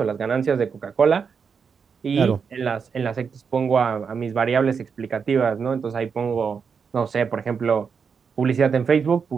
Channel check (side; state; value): left; quieter; 6.1 dB